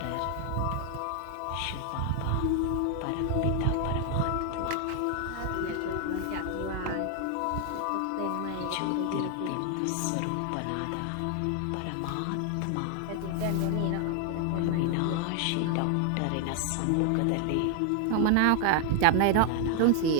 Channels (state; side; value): different; both; correlation 0.00